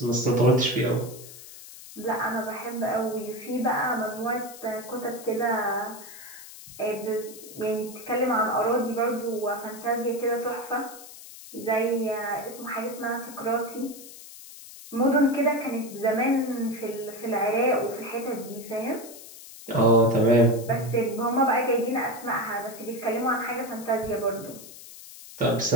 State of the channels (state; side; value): noise; left; hiss, 16 dB below the sound